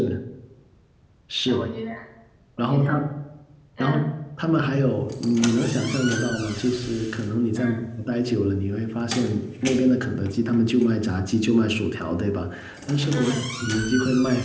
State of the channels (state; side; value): identical; both; correlation 1.00